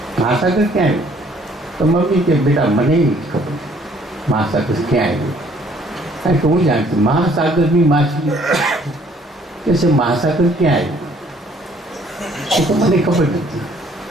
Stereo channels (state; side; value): normal; both; correlation 0.60